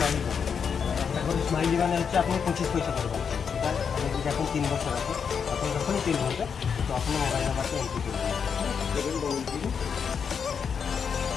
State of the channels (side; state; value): right; quieter; 6.6 dB